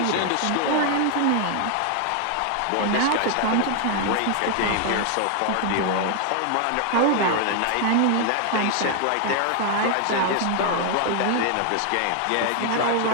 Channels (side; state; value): both; different; correlation 0.00